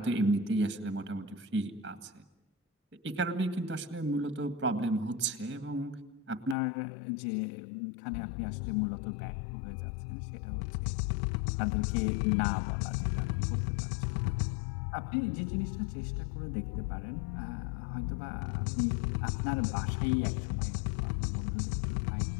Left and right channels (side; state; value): right; drops out; at 6.6 s